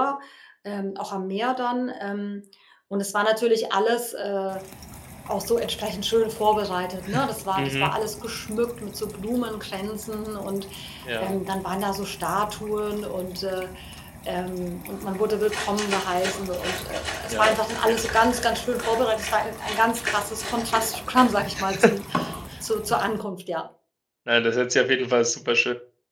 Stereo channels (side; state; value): both; identical; correlation 1.00